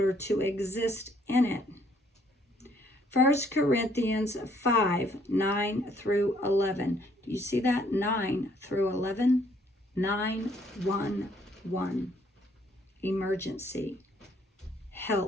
to exist in it. 1 Corinthians 5, 9 through 11. Do you see that? 9 through 11. 911. Emergency.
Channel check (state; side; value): normal; both; correlation 0.65